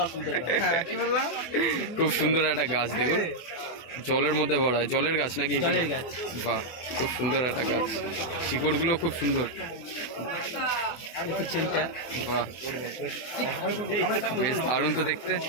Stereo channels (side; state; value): right; late; 24 ms